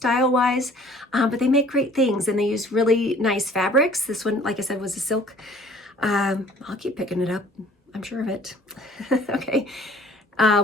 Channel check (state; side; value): normal; both; correlation 0.53